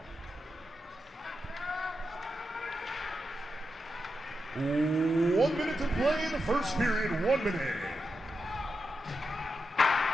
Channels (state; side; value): normal; both; correlation 0.88